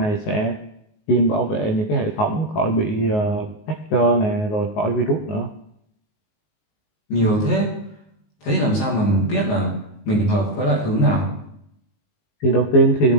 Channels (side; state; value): right; late; 19 ms